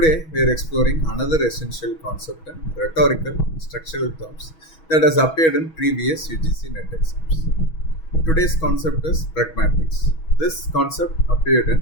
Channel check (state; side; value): late; right; 6.2 ms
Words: we are exploring another essential concept in rhetorical structural terms that has appeared in previous UGC NET exams. Today's concept is pragmatics. This concept appeared in